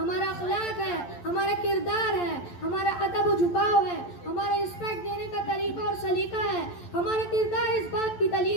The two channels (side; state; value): right; late; 11 ms